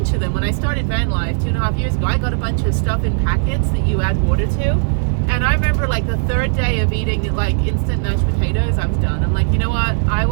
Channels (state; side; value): silent; left; digital silence